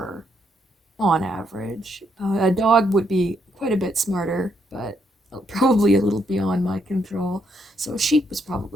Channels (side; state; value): both; normal; correlation 0.75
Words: on average. A dog would be quite a bit smarter, but probably a little beyond my control. So a sheep was